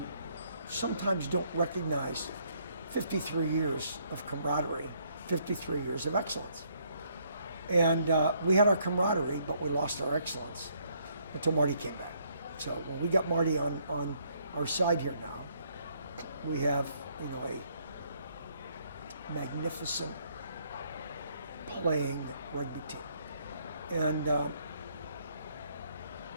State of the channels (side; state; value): both; inverted; correlation -0.69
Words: sometimes don't recognize 53 years of camaraderie, 53 years of excellence. And we had our camaraderie, but we lost our excellence until Marty came back. So when we got Marty on our side here now, we have, you know, a magnificent playing rugby team. And